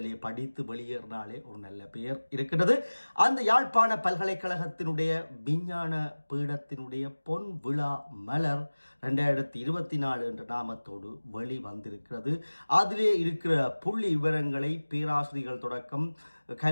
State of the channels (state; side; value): inverted; both; correlation -1.00